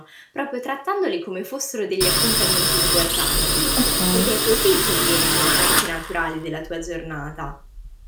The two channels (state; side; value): identical; both; correlation 1.00